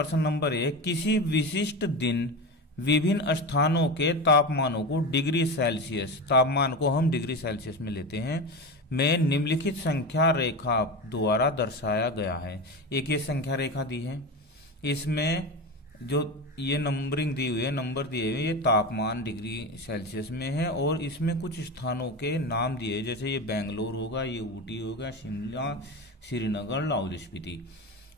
नंबर 1, किसी विशिष्ट दिन विभिन्न स्थानों के तापमानों को डिग्री सेल्सियस, तापमान को हम डिग्री सेल्सियस में लेते हैं, में निम्नलिखित संख्या रेखा द्वारा दर्शाया गया है। एक ये संख्या रेखा दी है, इसमें जो ये नंबरिंग दी हुई है, नंबर दिए हुए, ये तापमान डिग्री सेल्सियस में है और इसमें कुछ स्थानों के नाम दिए, जैसे ये बेंगलोर होगा, ये ऊटी होगा, शिमला, श्रीनगर, लाहौल स्पीति।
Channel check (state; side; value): normal; both; correlation 0.23